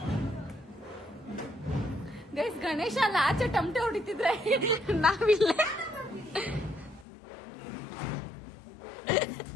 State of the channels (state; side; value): drops out; right; at 7.1 s